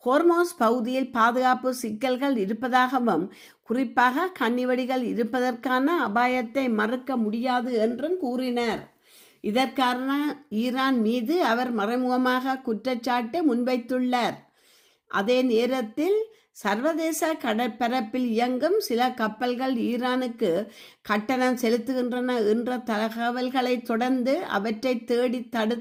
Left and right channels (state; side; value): identical; both; correlation 1.00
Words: ஹோர்மோஸ் பகுதியில் பாதுகாப்பு சிக்கல்கள் இருப்பதாகவும் குறிப்பாக கன்னிவெடிகள் இருப்பதற்கான அபாயத்தை மறுக்க முடியாது என்றும் கூறினார். இதற்கான ஈரான் மீது அவர் மறைமுகமாக குற்றச்சாட்டு முன்வைத்துள்ளார். அதே நேரத்தில் சர்வதேச கடற்பரப்பில் இயங்கும் சில கப்பல்கள் ஈரானுக்கு கட்டணம் செலுத்துகின்றன என்ற தகவல்களை தொடர்ந்து அவற்றை தேடி